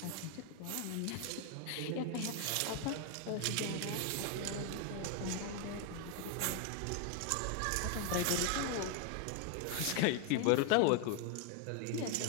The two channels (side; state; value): both; different; correlation 0.01